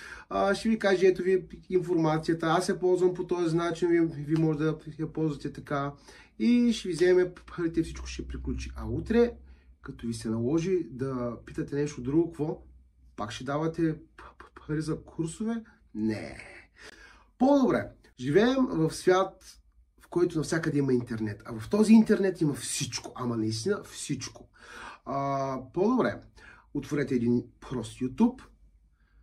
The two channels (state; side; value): identical; both; correlation 1.00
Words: ще ви каже, ето ви информацията, аз я ползвам по този начин, ви може да я ползвате така и ще ви вземе парите, всичко ще приключи. А утре, като ви се наложи да питате нещо друго, какво? Пак ще давате пари за курсове? Не. По-добре. Живеем в свят, в който навсякъде има интернет. А в този интернет има всичко. Ама наистина всичко. По-добре. Отворете един прост YouTube.